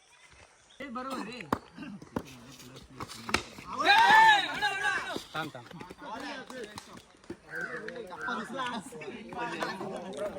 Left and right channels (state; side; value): identical; both; correlation 1.00